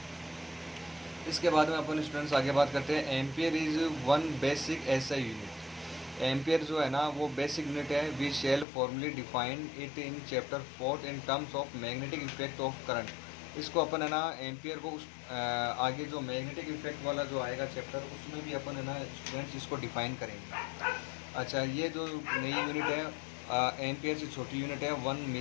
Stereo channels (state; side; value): drops out; right; at 8.7 s